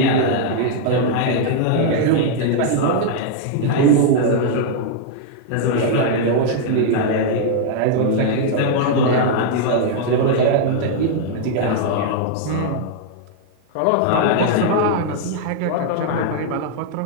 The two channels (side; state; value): both; different; correlation -0.01